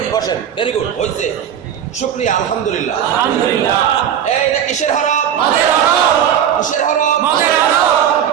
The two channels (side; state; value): left; quieter; 9.3 dB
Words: বসেন, ভেরি গুড, হয়েছে, শুকরিয়া, আলহামদুলিল্লাহ। এইটা কিসের হরফ? কিসের হরফ?